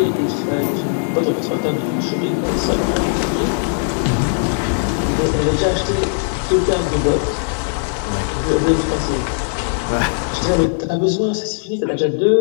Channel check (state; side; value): silent; right; digital silence